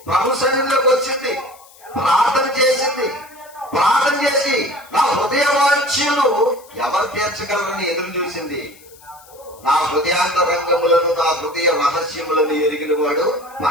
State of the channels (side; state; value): left; noise; hiss, 24 dB below the sound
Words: ప్రభు సన్నిధిలోకి వచ్చింది, ప్రార్థన చేసింది. ప్రార్థన చేసి నా హృదయ వాంఛలు ఎవరు తీర్చగలరని ఎదురు చూసింది. నా హృదయాంతరంగములను, నా హృదయ రహస్యములను ఎరిగిన వాడు